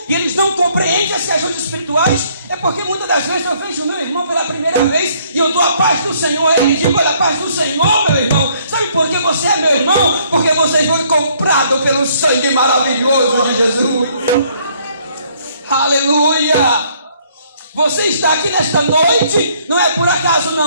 e eles não compreendem as questões espirituais, é porque muitas das vezes eu vejo o meu irmão pela primeira vez e eu dou a paz do Senhor, ele diz: olha, a paz do Senhor, meu irmão. Sabe por que você é meu irmão? Porque você foi comprado pelo sangue maravilhoso de Jesus. Aleluia! Você está aqui nesta noite, não é por acaso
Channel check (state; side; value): inverted; both; correlation -0.65